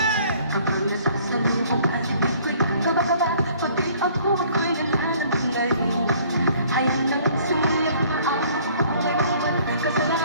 Kapag nasasalubong at hindi ko'y kabakaba, pati ako ko'y nananabing na rin. Ayaw nang sumulit na ako,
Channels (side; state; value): both; inverted; correlation -0.57